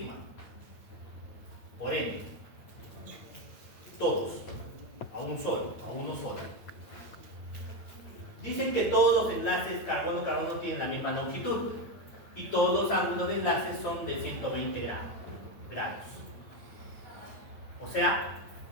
Por ende, todos, a uno solo. Dicen que todos los enlaces carbono-carbono tienen la misma longitud y todos los ángulos de enlace son de 120 grados. O sea,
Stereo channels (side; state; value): right; late; 9.0 ms